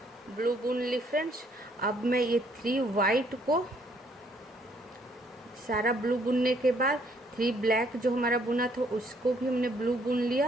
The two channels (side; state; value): both; normal; correlation 0.67